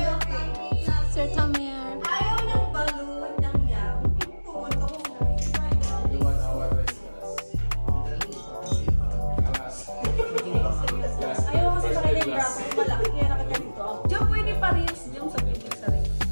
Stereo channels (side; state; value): both; inverted; correlation -1.00